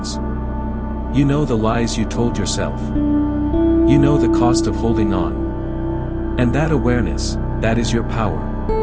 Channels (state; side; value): identical; both; correlation 1.00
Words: You know the lies you told yourself. You know the cost of holding on. And that awareness, that is your power.